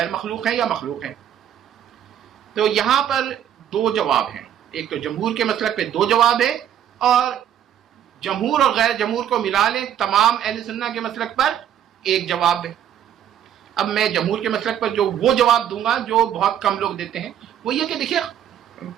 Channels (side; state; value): left; quieter; 10.0 dB